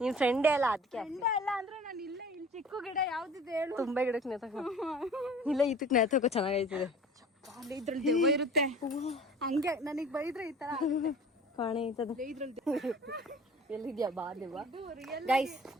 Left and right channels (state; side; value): normal; both; correlation 0.44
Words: ನಿನ್ ಫ್ರೆಂಡೇ ಎಲ್ಲ ಅದಕ್ಕೆ. ಫ್ರೆಂಡೇ ಅಲ್ಲ ಅಂದ್ರೆ ನಾನು ಇಲ್ಲಿ ಚಿಕ್ಕ ಗಿಡ ಯಾವ್ದಿದೆ ಹೇಳು? ತುಂಬಾ ಗಿಡಕ್ಕೆ ನೇತಕೋ. ಇಲ್ಲ, ಇದಕ್ಕೆ ನೇತಕೋ ಚೆನ್ನಾಗೈತದೆ. ಇದ್ರಲ್ಲಿ ದೆವ್ವ ಇರುತ್ತೆ. ಹಂಗೆ ನನಗ್ ಬೈದ್ರೆ ಈ ತರ ಕಾಣೆ ಐತದ. ಇದ್ರಲ್ಲಿ ಎಲ್ಲಿದ್ಯಾ ಬಾ ದೆವ್ವ. ಗೈಸ್,